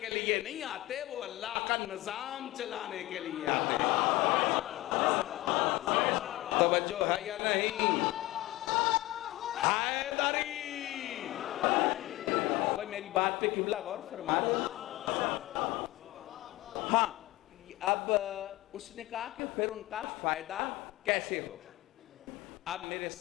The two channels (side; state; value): right; quieter; 18.8 dB